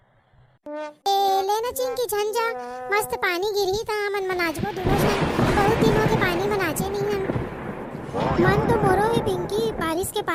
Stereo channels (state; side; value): identical; both; correlation 1.00